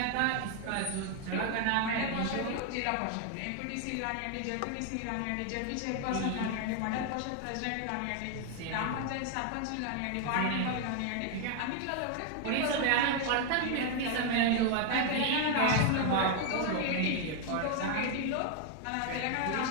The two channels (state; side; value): different; both; correlation 0.00